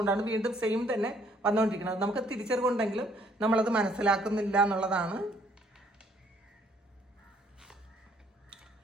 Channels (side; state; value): both; normal; correlation 0.64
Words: വീണ്ടും സെയിം തന്നെ വന്നുകൊണ്ടിരിക്കുന്നത്. നമുക്ക് തിരിച്ചറിവുണ്ടെങ്കിലും നമ്മളത് മനസ്സിലാക്കുന്നില്ല എന്നുള്ളതാണ്.